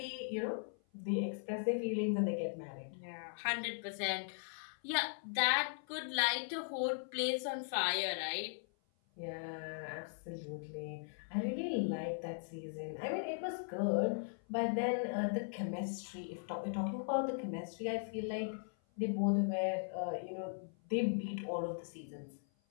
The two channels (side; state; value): right; silent; 52 dB below the other